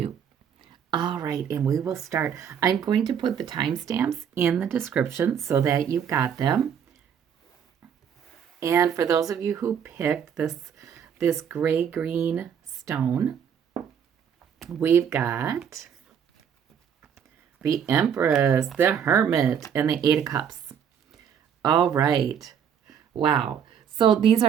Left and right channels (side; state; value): left; quieter; 8.1 dB